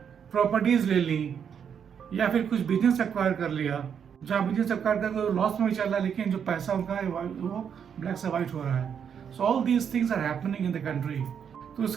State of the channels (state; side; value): quieter; left; 7.7 dB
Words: प्रॉपर्टीज ले ली, या फिर कुछ बिजनेस एक्वायर कर लिया, जहाँ बिजनेस एक्वायर करके लॉस में भी चल रहा है, लेकिन जो पैसा उनका है वो ब्लैक से वाइट हो रहा है। So all these things are happening in the country. तो